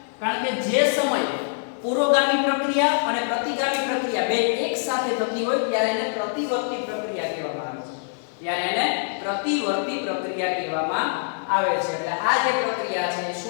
કારણ કે જે સમય પુરોગામી પ્રક્રિયા અને પ્રતિગામી પ્રક્રિયા બે એક સાથે થતી હોય ત્યારે એને પ્રતિવર્તી પ્રક્રિયા કહેવામાં આવે છે. ત્યારે એને પ્રતિવર્તી પ્રક્રિયા કહેવામાં આવે છે. એટલે આ જે પ્રક્રિયા છે એ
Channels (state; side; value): silent; right; digital silence